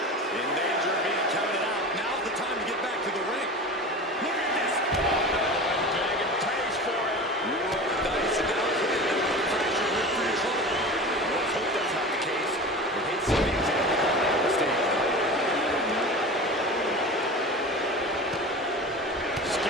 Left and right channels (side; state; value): both; normal; correlation 0.32